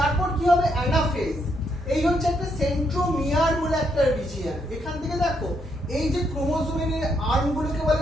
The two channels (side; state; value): both; normal; correlation 0.76